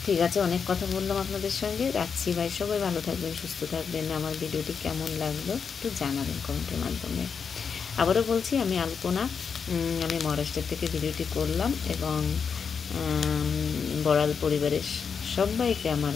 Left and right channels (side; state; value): right; quieter; 6.2 dB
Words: ঠিক আছে, অনেক কথা বললাম আপনাদের সঙ্গে, রাখছি ভাই। সবাই ভালো থাকবেন, সুস্থ থাকবেন। আমার ভিডিওটি কেমন লাগলো একটু জানাবেন কমেন্টের মাধ্যমে। আবারও বলছি, আমি আলপনা, আমি মহারাষ্ট্র থেকে ভিডিওটি করলাম, এবং বড়াল পরিবারের সবাইকে আমার